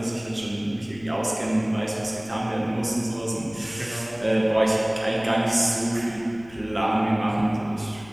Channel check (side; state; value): left; noise; rumble, 22 dB below the sound